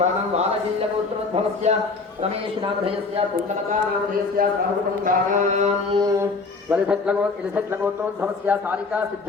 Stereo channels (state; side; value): quieter; right; 4.1 dB